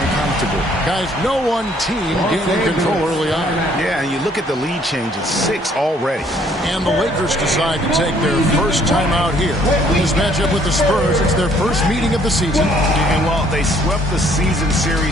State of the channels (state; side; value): normal; both; correlation 0.62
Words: Guys, no one team gaining control early on. Yeah, and you look at the lead change, it's 6 already. And the Lakers decide to take their first time out here. This matchup with the Spurs, it's their first meeting of the season. And well, they swept the season